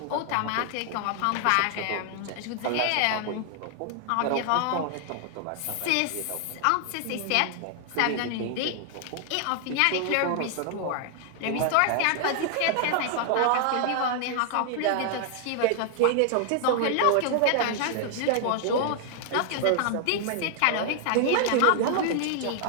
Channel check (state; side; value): different; both; correlation 0.00